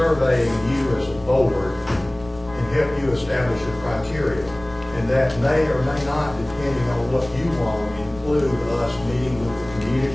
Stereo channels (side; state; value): left; noise; rumble, 18 dB below the sound